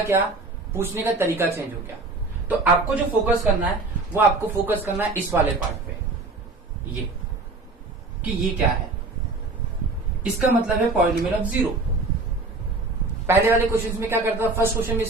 पूछने का तरीका चेंज हो गया। तो आपको जो फोकस करना है वो आपको फोकस करना है इस वाले पार्ट पे, ये कि ये क्या है, इसका मतलब है पॉलिनोमियल ऑफ 0। पहले वाले क्वेश्चन में क्या करता था, फर्स्ट क्वेश्चन में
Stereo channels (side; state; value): left; quieter; 3.4 dB